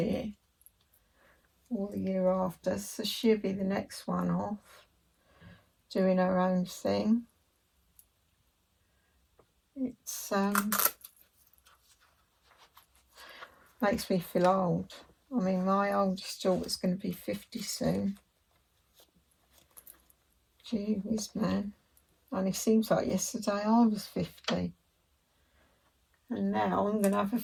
or the year after, so she'll be the next one off, doing her own thing. It's makes me feel old. I mean, my oldest daughter's going to be 50 soon. Gee whiz, man. Only seems like yesterday I was 50. And now I'm going to have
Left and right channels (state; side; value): identical; both; correlation 1.00